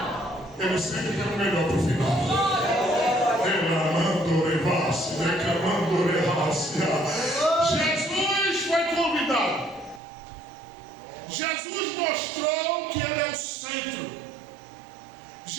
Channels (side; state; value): left; drops out; at 10.0 s